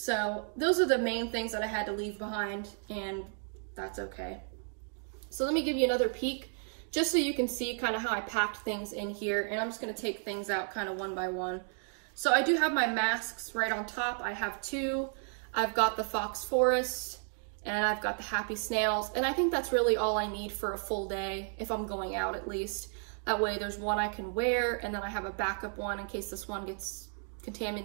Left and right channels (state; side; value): silent; left; 56 dB below the other